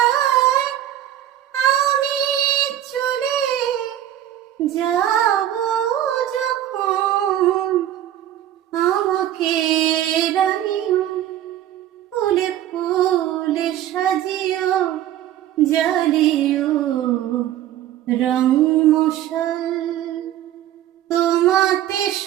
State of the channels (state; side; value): quieter; left; 12.0 dB